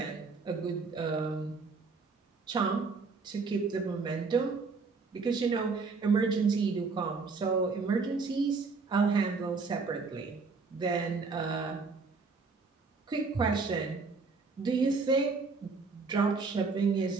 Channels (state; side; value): quieter; left; 4.4 dB